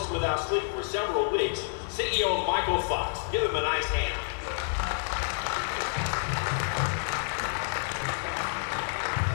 without sleep for several weeks, CEO Michael Fox. Give him a nice hand.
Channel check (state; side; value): silent; right; digital silence